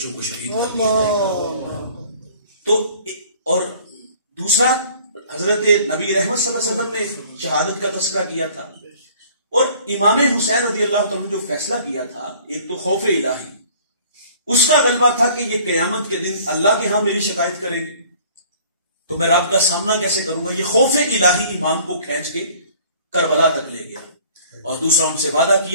کو شہید کر دیا گیا. تو اور دوسرا حضرت نبی رحمت صلی اللہ علیہ وسلم نے شہادت کا تذکرہ کیا تھا اور امام حسین رضی اللہ تعالیٰ نے جو فیصلہ کیا تھا ایک تو خوف الہی، اس کا غلبہ تھا کہ یہ قیامت کے دن اللہ کے ہاں میری شکایت کریں گے تو میں رب کا سامنا کیسے کروں گا. یہ خوف الہی امام کو کھینچ کے کربلا تک لے گیا. اور دوسرا ان سے وعدہ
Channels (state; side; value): inverted; both; correlation -0.53